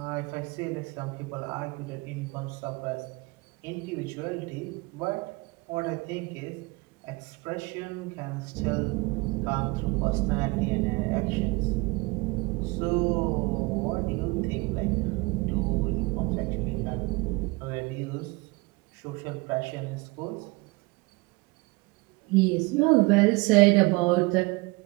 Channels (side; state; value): left; quieter; 25.5 dB